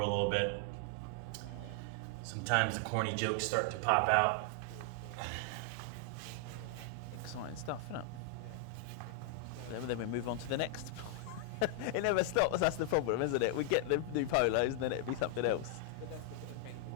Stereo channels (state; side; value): different; both; correlation 0.00